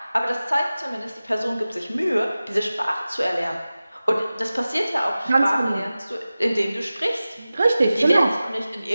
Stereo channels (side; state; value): both; inverted; correlation -0.96